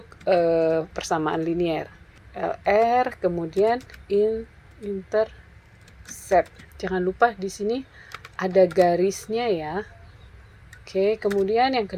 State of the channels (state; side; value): identical; both; correlation 1.00